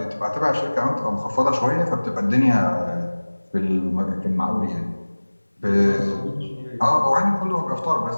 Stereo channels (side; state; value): both; inverted; correlation -1.00